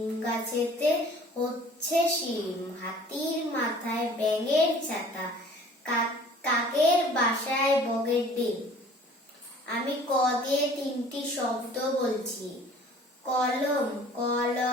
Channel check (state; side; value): normal; both; correlation 0.50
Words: গাছেতে হচ্ছে শিম, হাতির মাথায় ব্যাঙের ছাতা, কাকের বাসায় বগের ডিম। আমি ক দিয়ে তিনটি শব্দ বলছি। কলম